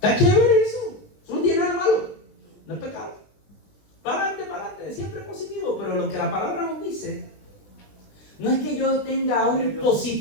chévere eso no tiene nada malo, no es pecado. Para adelante, siempre positivo. Pero lo que la palabra nos dice no es que yo tenga un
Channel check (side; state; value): right; late; 20 ms